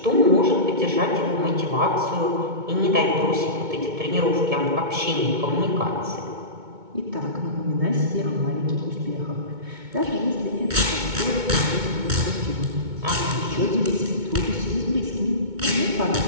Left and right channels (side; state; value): left; late; 2.2 ms